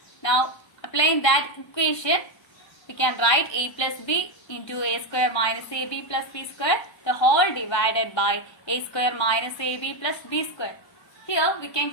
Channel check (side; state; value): right; late; 1.3 ms